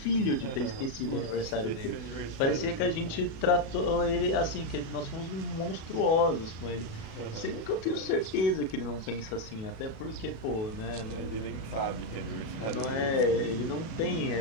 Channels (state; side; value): late; right; 36 ms